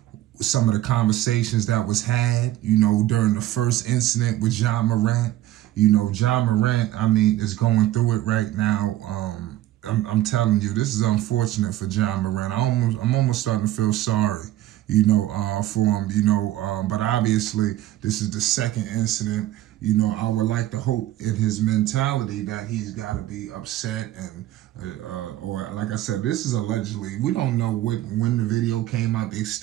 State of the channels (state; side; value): quieter; left; 14.4 dB